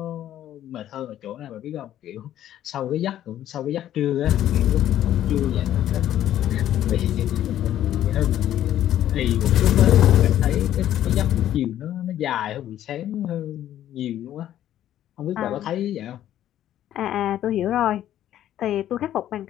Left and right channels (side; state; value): right; quieter; 11.9 dB